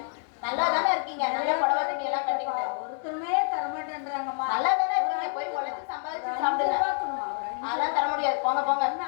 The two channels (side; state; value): right; silent; 60 dB below the other